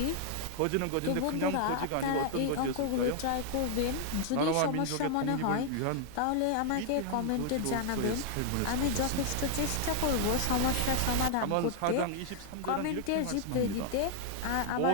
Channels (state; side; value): different; both; correlation 0.00